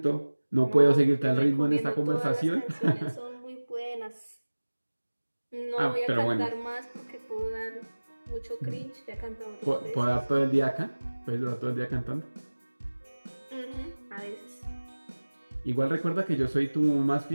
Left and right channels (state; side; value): inverted; both; correlation -1.00